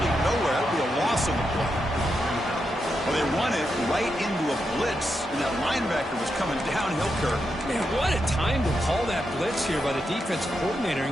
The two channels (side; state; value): both; normal; correlation 0.85